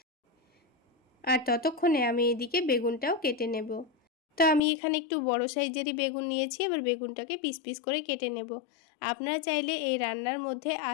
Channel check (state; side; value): drops out; right; at 4.6 s